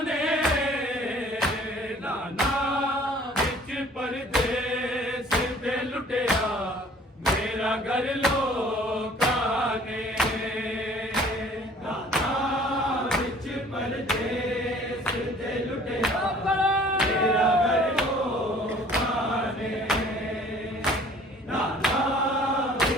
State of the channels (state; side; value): normal; both; correlation 0.53